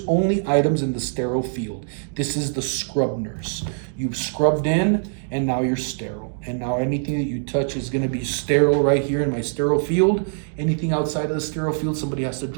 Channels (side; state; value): left; silent; digital silence